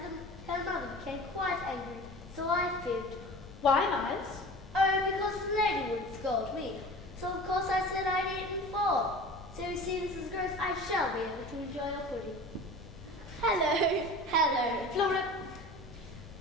her mother became quite angry, so I fibbed. Why, Miles? Oh, because the lady would scold me. So of course I said I'd eaten 4. So you see, Mrs. Gross, I shall be able to enjoy your pudding. Hello, hello. Flora,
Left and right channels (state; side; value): normal; both; correlation 0.38